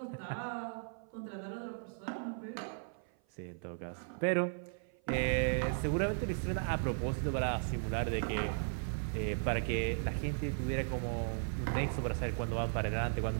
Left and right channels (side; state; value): left; silent; 53 dB below the other